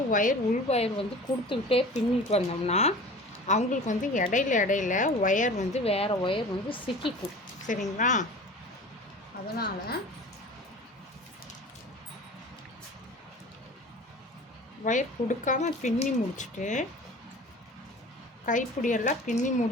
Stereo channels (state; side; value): normal; both; correlation 0.40